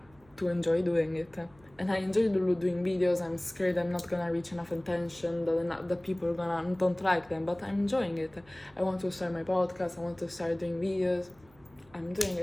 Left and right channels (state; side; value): noise; right; hum, 29 dB below the sound